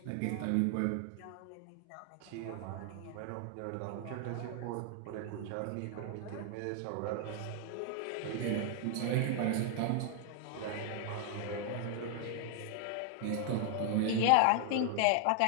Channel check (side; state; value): both; different; correlation 0.00